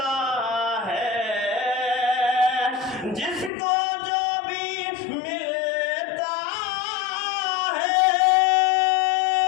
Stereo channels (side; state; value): right; drops out; at 3.5 s